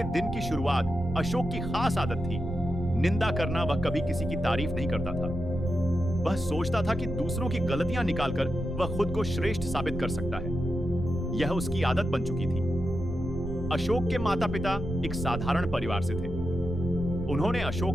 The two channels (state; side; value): noise; right; rumble, 10 dB below the sound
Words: दिन की शुरुआत अशोक की खास आदत थी, निंदा करना। वह कभी किसी की तारीफ नहीं करता था। वह सोचता था कि दूसरों की गलतियां निकालकर वह खुद को श्रेष्ठ साबित कर सकता है। यह उसकी आदत बन चुकी थी। अशोक के माता पिता एक साधारण परिवार से थे। उन्होंने